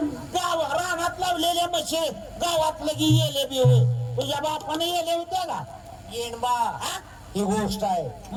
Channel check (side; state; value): both; identical; correlation 1.00